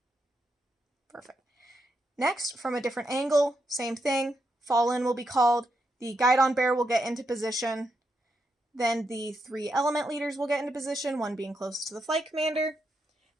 Perfect. Next, from a different angle, same thing. Fall in will be called. The guidon bear will get into position. Then the 3 element leaders will get into position, one being closest to the flight commander.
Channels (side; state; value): both; normal; correlation 0.82